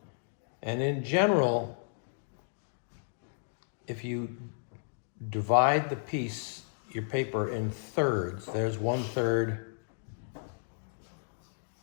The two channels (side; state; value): right; silent; digital silence